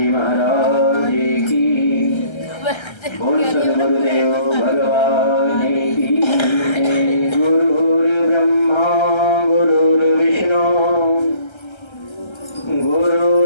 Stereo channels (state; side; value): late; right; 1.3 ms